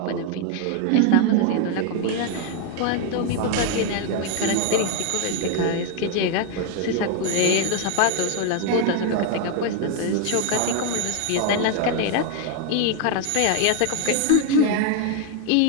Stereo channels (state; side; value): different; both; correlation 0.01